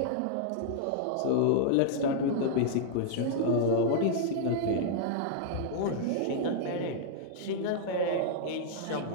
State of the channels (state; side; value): different; both; correlation -0.01